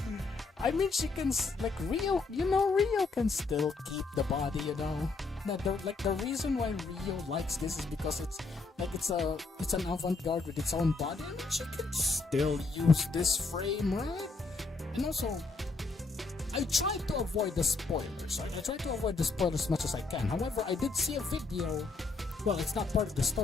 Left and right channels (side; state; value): right; quieter; 3.9 dB